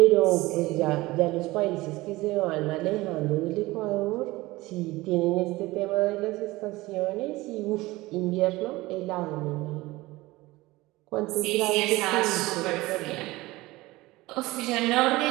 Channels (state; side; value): quieter; left; 19.8 dB